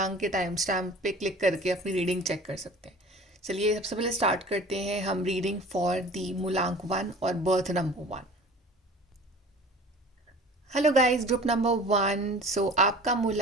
के टाइम स्टैम्प पे क्लिक करके अपनी रीडिंग चेक कर सकते हैं। चलिए सबसे पहले स्टार्ट करते हैं हम रीडिंग फॉर दी मूलांक 1 और birth number 1। Hello guys, group number 1। आपका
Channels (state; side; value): normal; both; correlation 0.43